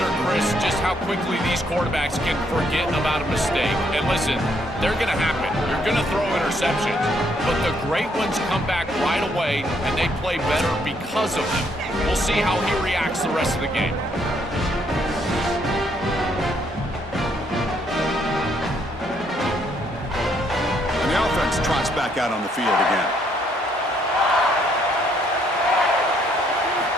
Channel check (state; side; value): normal; both; correlation 0.70